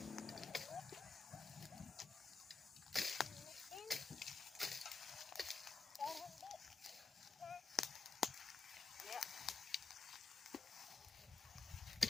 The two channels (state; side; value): quieter; right; 4.5 dB